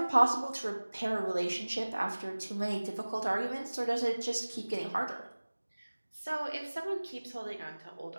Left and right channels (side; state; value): both; inverted; correlation -1.00